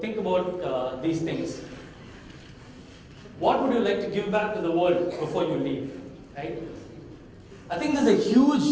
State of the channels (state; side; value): identical; both; correlation 1.00